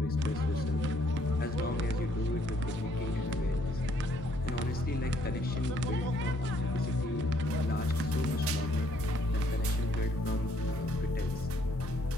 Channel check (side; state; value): both; normal; correlation 0.68